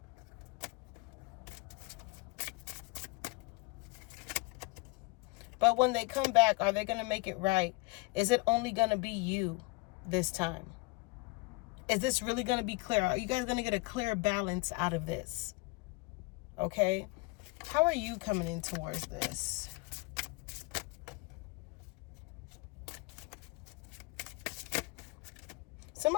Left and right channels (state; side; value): quieter; right; 24.6 dB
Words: But when they come back, are they going to make it right? Is it only going to be you this time? Is this really going to be clear? Are you guys going to get a clear balance out of this? Okay? How are you coming in towards this?